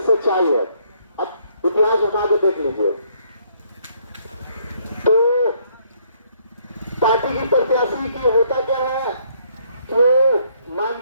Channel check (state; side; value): inverted; both; correlation -0.67